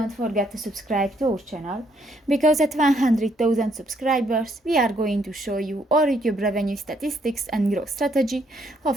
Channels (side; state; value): both; normal; correlation 0.70